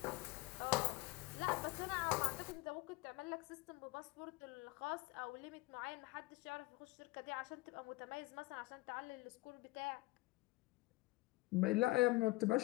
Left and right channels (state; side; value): quieter; right; 21.0 dB